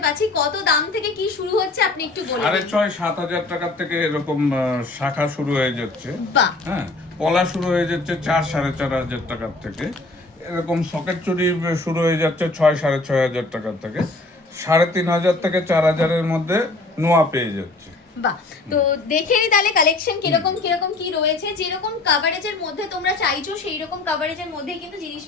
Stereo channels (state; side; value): quieter; right; 3.2 dB